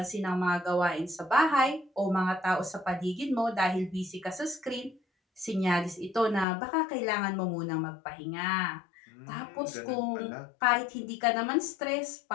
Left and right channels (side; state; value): right; drops out; at 6.5 s